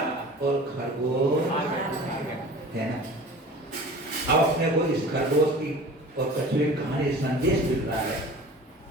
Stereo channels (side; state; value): both; normal; correlation 0.40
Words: और खरगोश है ना। अब अपने को इस खरगोश की और कछुए की कहानी संदेश मिल रहा है